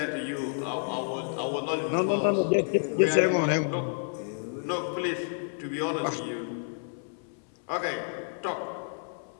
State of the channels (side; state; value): right; silent; 58 dB below the other